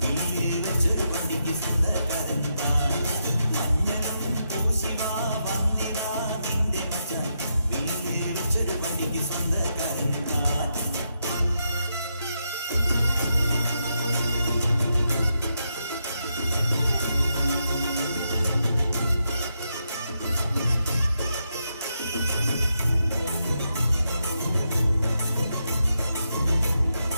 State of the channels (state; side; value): inverted; both; correlation -0.82